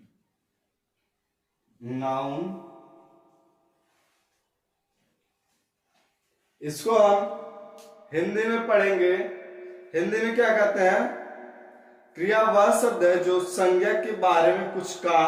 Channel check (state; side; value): identical; both; correlation 1.00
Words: Noun, इसको हम हिंदी में पढ़ेंगे। हिंदी में क्या कहते हैं, क्रिया वह शब्द है जो संज्ञा के बारे में कुछ